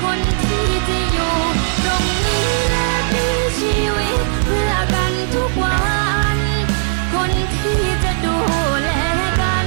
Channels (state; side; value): silent; left; 68 dB below the other